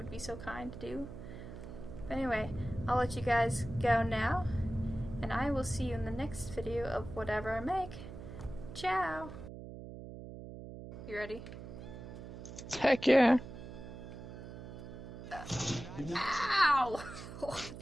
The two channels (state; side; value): noise; right; hum, 11 dB below the sound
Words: be so kind to do. But anyway, I'll let you guys go now, and I will see you in the next video of whatever I make. Ciao! You ready? Heck yeah. Ow!